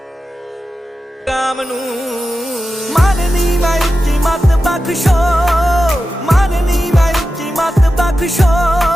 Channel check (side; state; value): both; normal; correlation 0.92